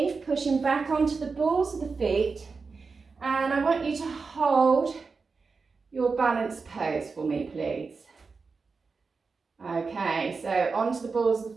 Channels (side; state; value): left; quieter; 4.6 dB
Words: pushing back onto the balls of the feet. And I want you to hold your balanced pose for me, please. Okay, so onto the balls of